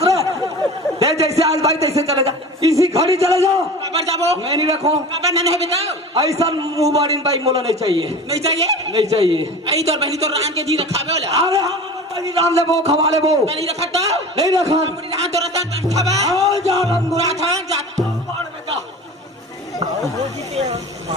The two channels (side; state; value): both; normal; correlation 0.36